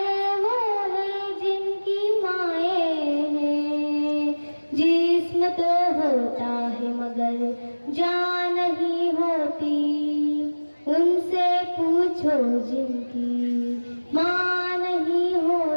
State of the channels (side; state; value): both; inverted; correlation -1.00